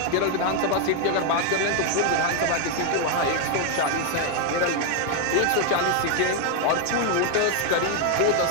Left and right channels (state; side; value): different; both; correlation 0.01